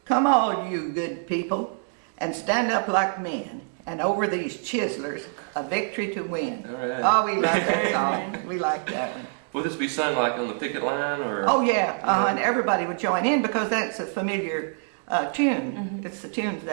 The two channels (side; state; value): left; silent; 61 dB below the other